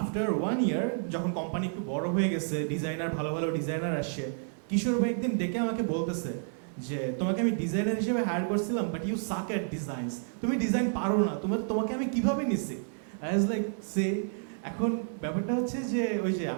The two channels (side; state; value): left; silent; digital silence